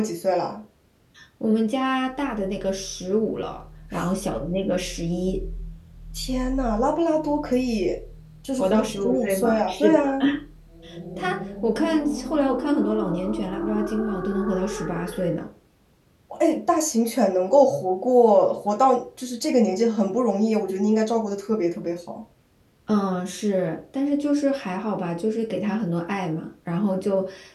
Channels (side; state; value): both; identical; correlation 1.00